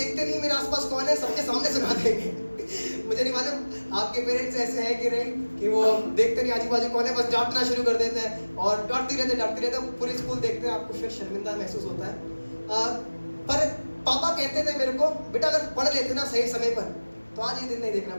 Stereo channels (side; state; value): both; inverted; correlation -1.00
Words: नहीं मेरे आसपास कौन है, सबके सामने सुना देंगे। मुझे नहीं मालूम आपके पेरेंट्स ऐसे हैं कि नहीं, कि वो देखते नहीं आजू बाजू कौन है, बस डांटना शुरू कर देते हैं और डांटते रहते पूरी स्कूल देखते हैं, आपको फिर शर्मिंदा महसूस होता है। पर पापा कहते थे मेरे को बेटा अगर पढ़ लेते ना सही समय पर तो आज ये दिन नहीं देखना